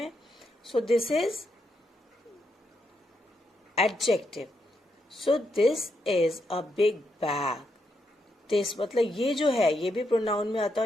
So this is adjective. So this is a big bag. This मतलब ये जो है, ये भी प्रोनाउन में आता है,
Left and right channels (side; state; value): both; normal; correlation 0.81